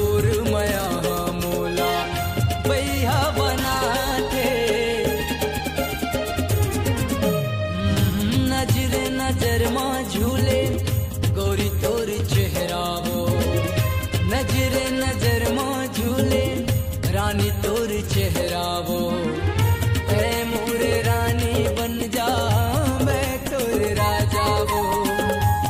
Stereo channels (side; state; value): both; identical; correlation 1.00